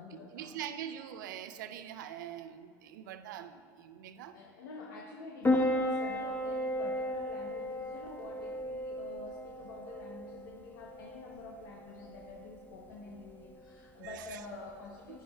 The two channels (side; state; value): both; normal; correlation 0.48